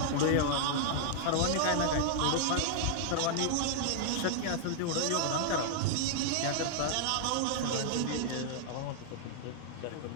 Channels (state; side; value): different; both; correlation -0.01